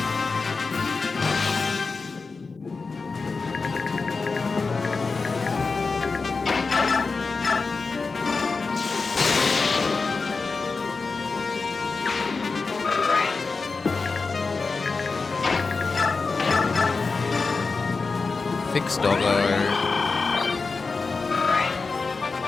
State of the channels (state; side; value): quieter; right; 4.3 dB